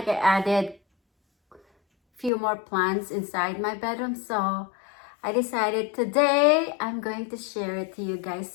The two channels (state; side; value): drops out; right; at 2.3 s